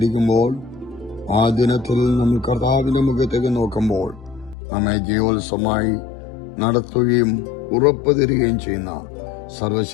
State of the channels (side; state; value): right; drops out; at 4.5 s